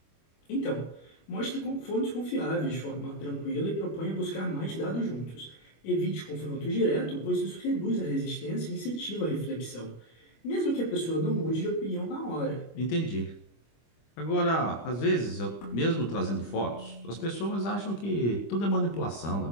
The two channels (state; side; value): late; right; 25 ms